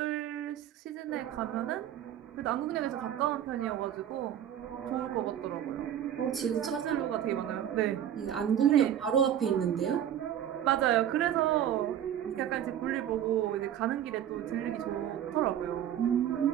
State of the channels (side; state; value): left; quieter; 10.4 dB